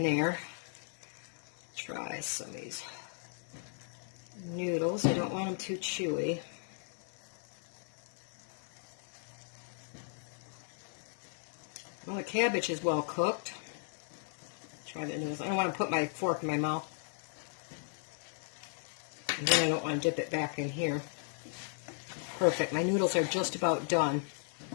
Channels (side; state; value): right; silent; 54 dB below the other